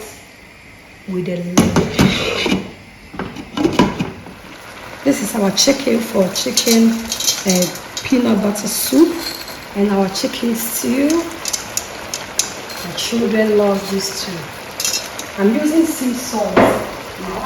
with a lid. This is our chicken for chicken peanut butter soup and our chicken stew. My children love this too. I'm using sea salt. I'll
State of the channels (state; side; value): identical; both; correlation 1.00